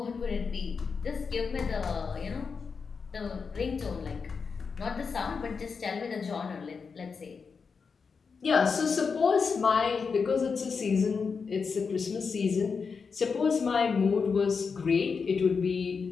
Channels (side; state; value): right; quieter; 5.4 dB